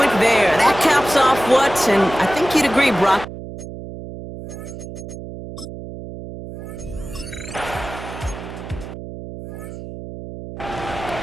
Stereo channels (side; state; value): right; noise; hum, 11 dB below the sound